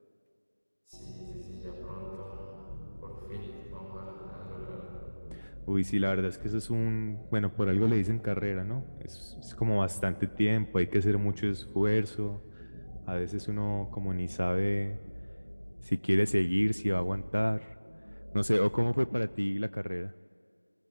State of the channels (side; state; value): both; inverted; correlation -1.00